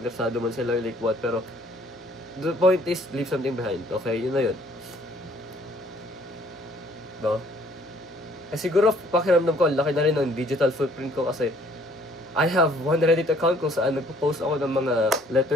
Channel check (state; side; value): normal; both; correlation 0.60